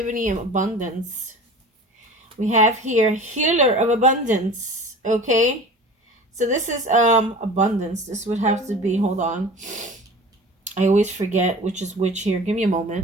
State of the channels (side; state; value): both; normal; correlation 0.39